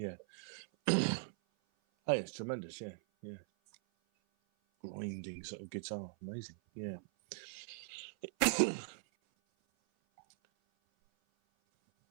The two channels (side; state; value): left; silent; 51 dB below the other